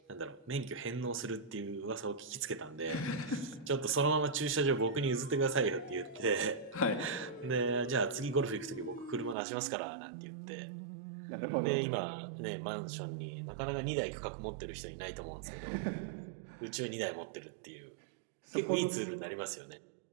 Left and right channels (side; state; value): left; drops out; at 9.3 s